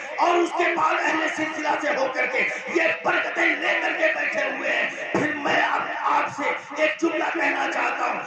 اور اس کے بعد اہل سلسلہ سے ہو کر کے یہ برکتیں لے کر کے بیٹھے ہوئے ہیں. پھر میں آپ سے ایک جملہ کہنا چاہتا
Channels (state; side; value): identical; both; correlation 1.00